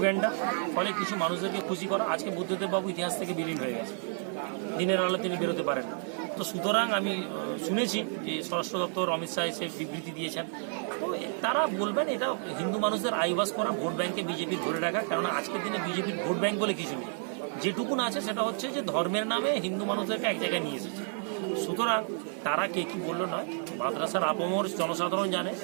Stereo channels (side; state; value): left; silent; 55 dB below the other